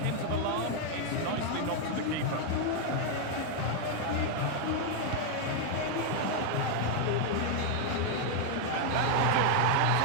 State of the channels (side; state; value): both; different; correlation 0.00